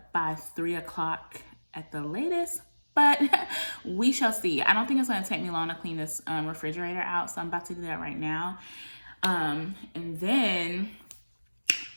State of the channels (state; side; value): inverted; both; correlation -1.00